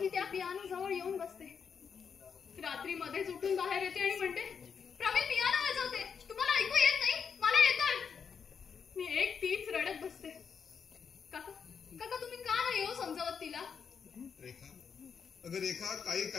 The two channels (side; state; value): right; quieter; 6.6 dB